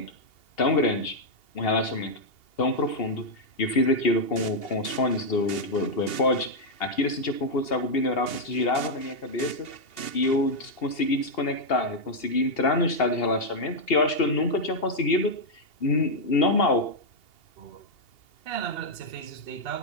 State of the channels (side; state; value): right; late; 2.8 ms